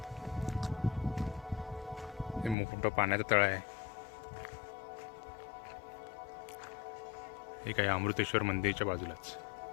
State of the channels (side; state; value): right; drops out; at 2.6 s